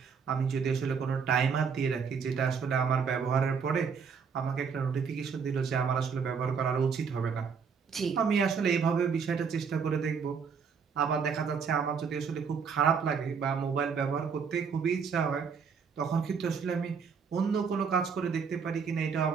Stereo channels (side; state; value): left; quieter; 6.1 dB